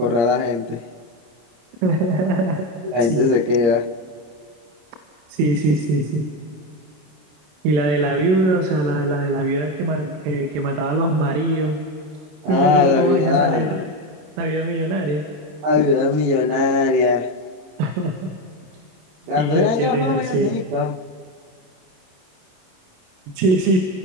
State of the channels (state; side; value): late; left; 26 ms